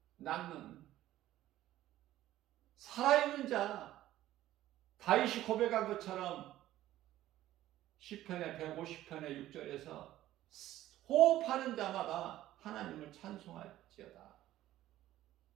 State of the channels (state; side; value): quieter; left; 14.2 dB